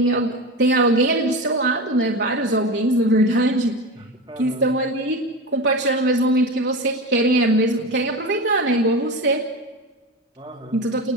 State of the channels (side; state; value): both; normal; correlation 0.24